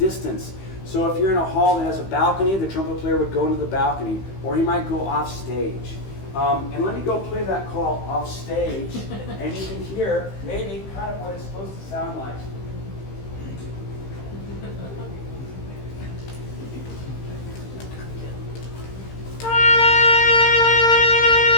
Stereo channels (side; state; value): right; late; 15 ms